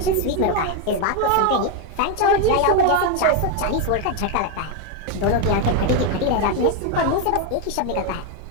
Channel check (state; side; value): different; both; correlation 0.02